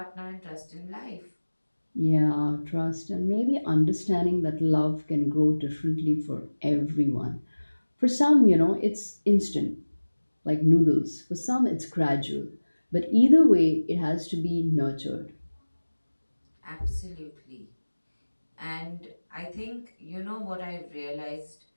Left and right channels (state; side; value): inverted; both; correlation -1.00